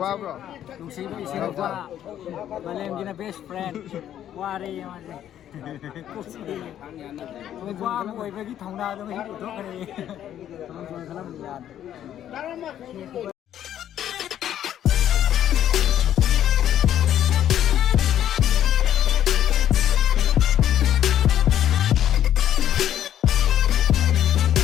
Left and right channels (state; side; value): quieter; right; 10.9 dB